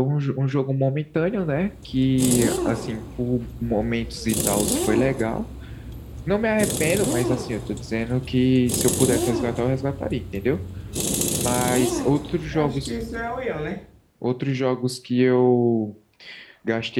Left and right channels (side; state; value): both; identical; correlation 1.00